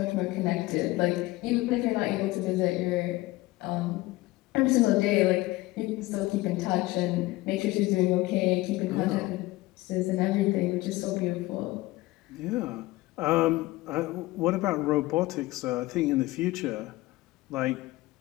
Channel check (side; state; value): right; quieter; 19.4 dB